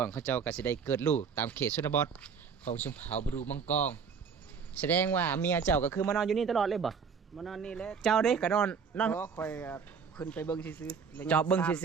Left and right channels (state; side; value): quieter; left; 6.2 dB